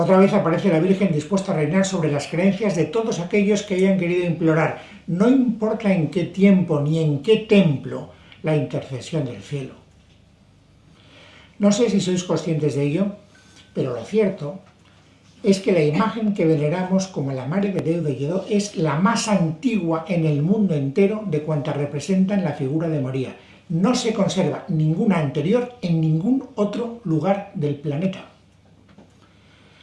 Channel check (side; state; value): both; identical; correlation 1.00